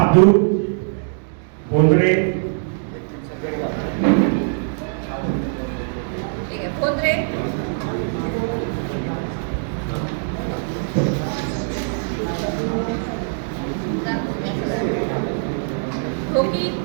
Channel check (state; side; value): silent; left; digital silence